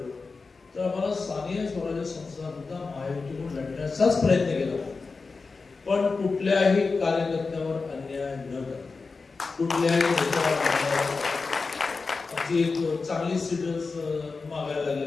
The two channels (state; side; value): quieter; right; 4.3 dB